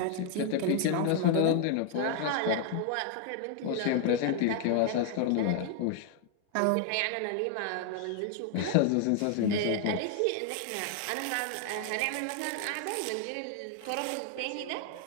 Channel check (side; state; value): both; different; correlation 0.00